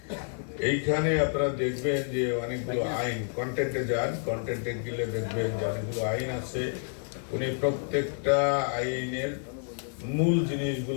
এইখানে আপনারা দেখবেন যে অনেকগুলো আইন, কন্টেন্টে যান, কন্টেন্টে গেলে দেখবেন যে অনেকগুলো আইন আছে। উনি প্রত্যেকটা আইনের মূল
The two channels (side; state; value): right; silent; digital silence